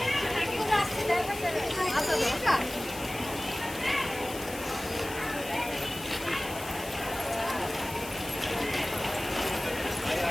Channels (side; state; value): left; noise; hiss, 13 dB below the sound